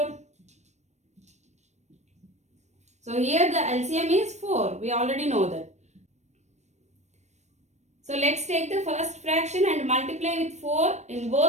So here the LCM is 4. We already know that. So let's take the first fraction and multiply with 4 in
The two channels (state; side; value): late; left; 0.33 ms